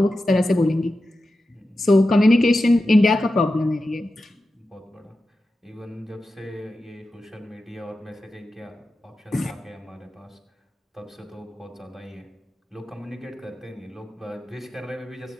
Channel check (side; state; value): both; normal; correlation 0.92